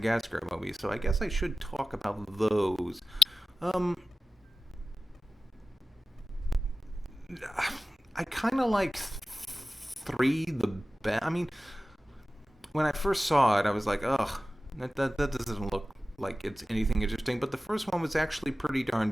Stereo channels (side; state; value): both; normal; correlation 0.95